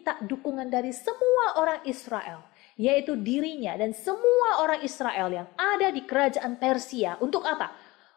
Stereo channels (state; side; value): quieter; right; 21.2 dB